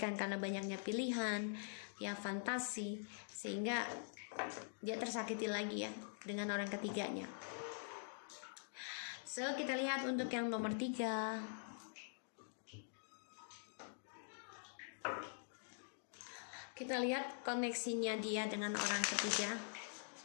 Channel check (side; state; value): right; silent; digital silence